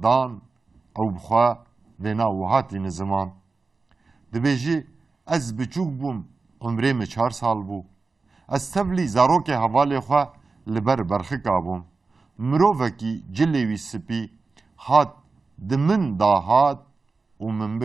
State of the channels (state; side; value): quieter; left; 4.1 dB